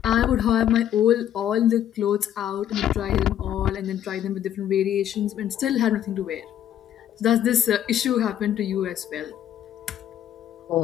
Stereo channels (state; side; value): quieter; right; 10.7 dB